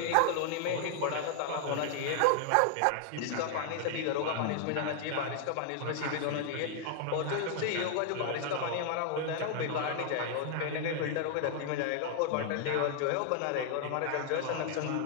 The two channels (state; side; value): different; both; correlation 0.00